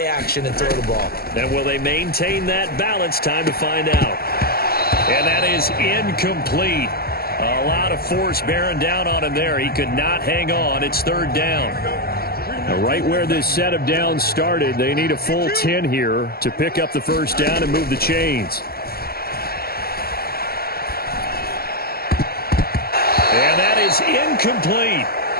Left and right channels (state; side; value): late; right; 0.44 ms